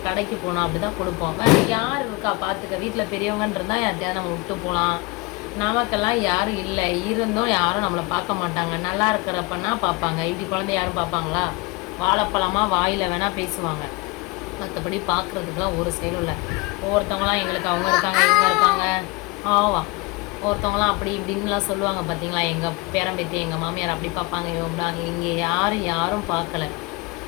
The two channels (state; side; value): quieter; right; 24.7 dB